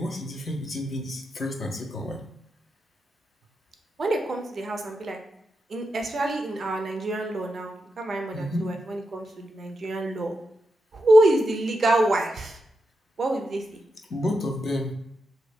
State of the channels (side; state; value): both; normal; correlation 0.87